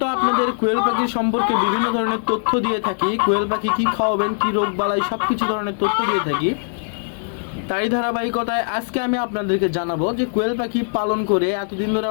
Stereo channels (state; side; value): silent; right; digital silence